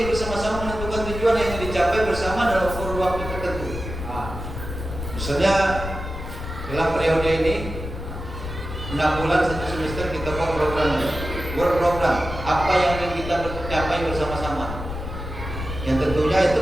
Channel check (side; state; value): left; noise; rumble, 8 dB below the sound